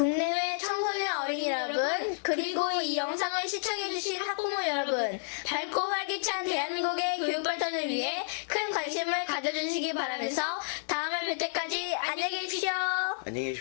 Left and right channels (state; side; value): silent; right; digital silence